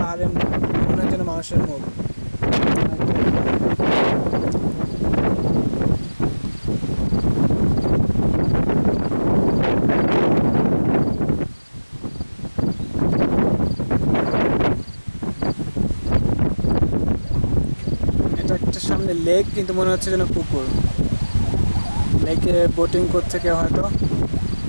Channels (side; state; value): both; inverted; correlation -1.00